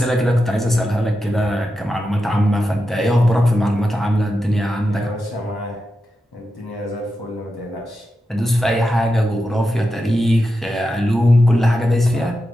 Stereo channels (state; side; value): normal; both; correlation 0.89